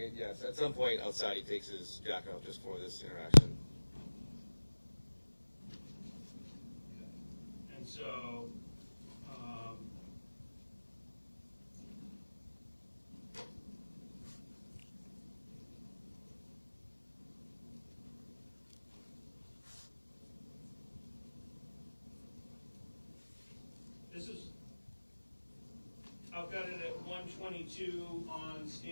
Yes, at some point outside he takes his jacket off just for this interaction. And so, this is, I've got it at 1:22 on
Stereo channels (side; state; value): both; inverted; correlation -1.00